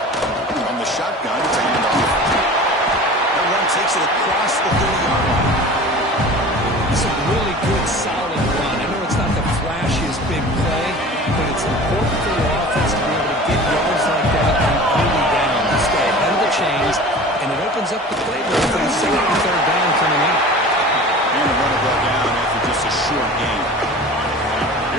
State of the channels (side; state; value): both; normal; correlation 0.39